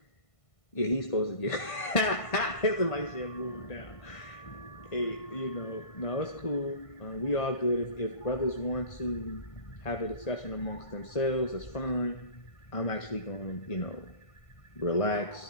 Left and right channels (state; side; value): late; right; 1.5 ms